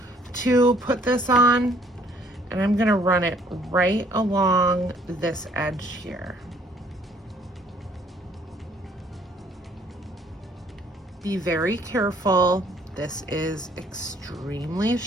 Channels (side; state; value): both; normal; correlation 0.61